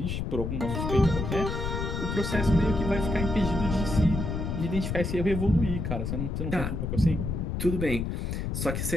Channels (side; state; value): left; noise; rumble, 2 dB below the sound